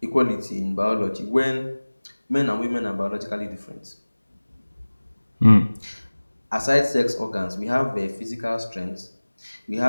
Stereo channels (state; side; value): inverted; both; correlation -1.00